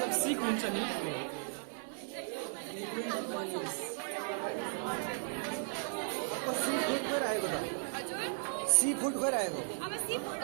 सिक हुन्छ नि सी फुड गएर आएको त सी फुड गएर आएको अब सी फुड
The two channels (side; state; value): left; silent; digital silence